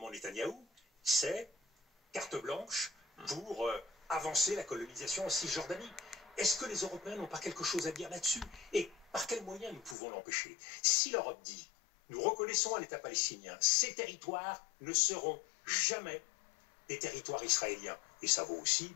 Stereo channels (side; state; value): right; drops out; at 10.0 s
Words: Netanyahou, c'est carte blanche pour avancer la colonisation en Cisjordanie. Est-ce que les Européens n'ont pas quelque chose à dire là-dessus? Et par quels moyens nous pouvons l'empêcher? Si l'Europe dit, nous reconnaissons un État palestinien, ces territoires ne seront jamais des territoires israéliens, et ça vaut aussi